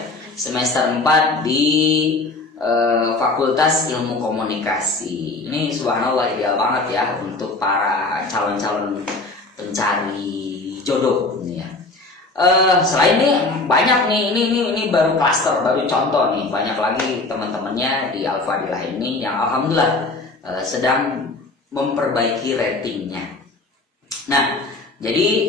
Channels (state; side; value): quieter; right; 3.3 dB